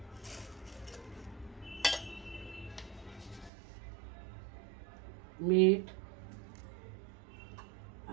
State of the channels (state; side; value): drops out; left; at 3.5 s